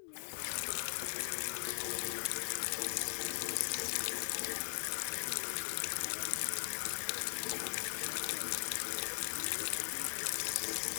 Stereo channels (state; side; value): silent; right; digital silence